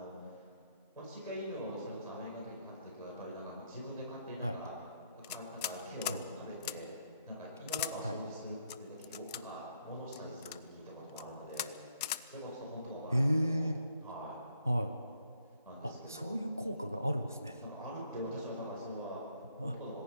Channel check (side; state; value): both; inverted; correlation -0.72